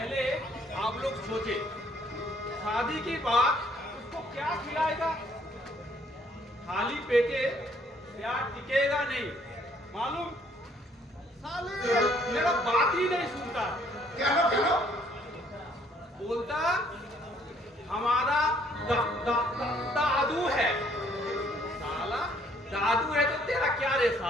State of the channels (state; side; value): normal; both; correlation 0.63